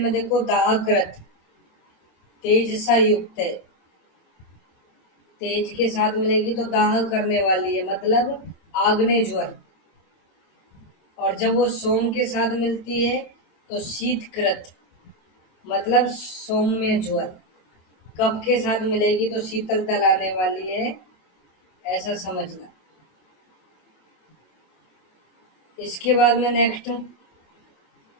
में देखो दाहकृत, तेज सा युक्त है। तेज के साथ मिलेगी तो दाह करने वाली है, मतलब आग्नेय ज्वर। और जब वो सोम के साथ मिलती है तो शीतकृत, मतलब सौम्य ज्वर। कब के साथ मिलेगी तो शीतलता लाने वाली है, ऐसा समझना। इसके बाद में नेक्स्ट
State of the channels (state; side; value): late; right; 27 ms